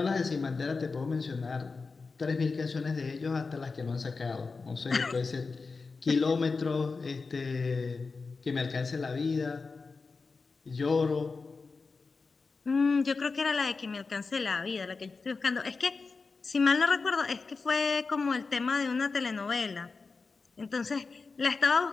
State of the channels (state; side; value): quieter; right; 4.3 dB